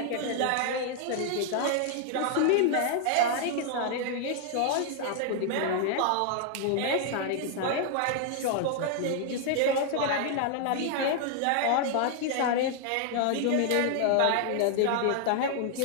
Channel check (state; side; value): different; both; correlation 0.00